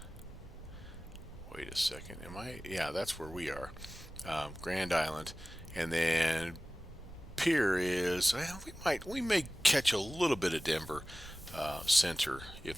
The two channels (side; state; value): both; normal; correlation 0.97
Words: Wait a second, yeah, that's where we are. Grand Island, and then Pier is, well, we may catch a little bit of Denver Center